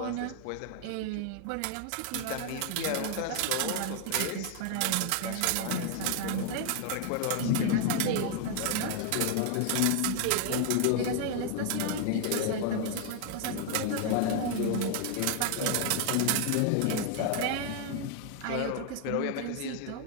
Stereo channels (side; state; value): both; different; correlation 0.00